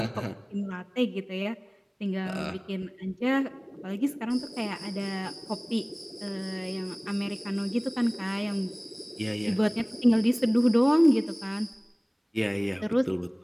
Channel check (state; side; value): identical; both; correlation 1.00